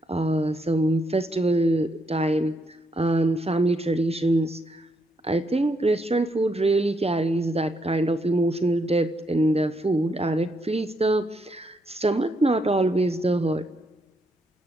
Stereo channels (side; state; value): both; normal; correlation 0.76